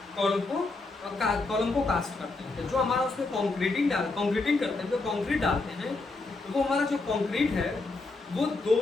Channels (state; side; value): quieter; right; 3.4 dB